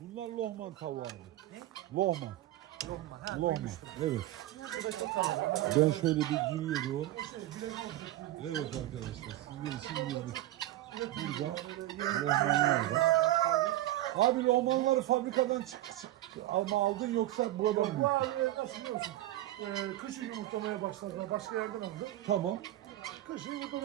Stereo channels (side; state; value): left; quieter; 15.1 dB